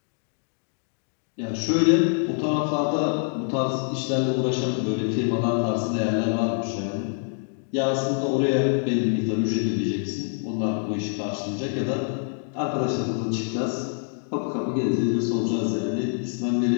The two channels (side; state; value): right; silent; 55 dB below the other